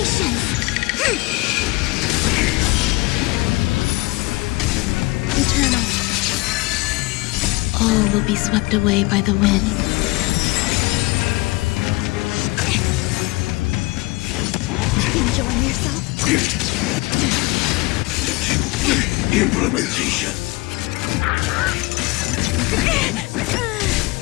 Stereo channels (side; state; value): right; quieter; 23.0 dB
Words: Eternal. All will be swept away by the wind. Enjoying yourself? Implementation.